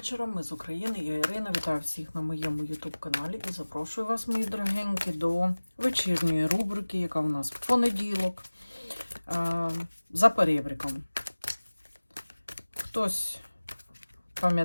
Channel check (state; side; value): inverted; both; correlation -1.00